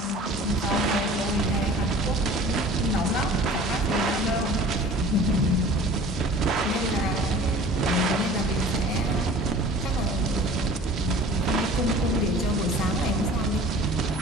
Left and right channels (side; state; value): both; normal; correlation 0.45